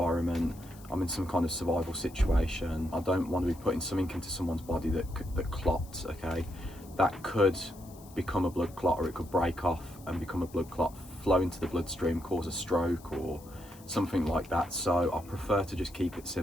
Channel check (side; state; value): left; noise; hiss, 22 dB below the sound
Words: I'm in some kind of survival situation, I don't want to be putting something into someone's body that clots, okay? That could become a blood clot, or it could break off and become a blood clot, flow into the bloodstream, cause a stroke or something like that. So I prefer to just keep it